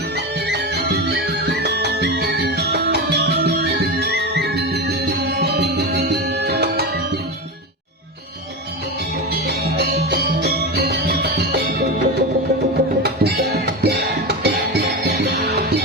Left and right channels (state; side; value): normal; both; correlation 0.20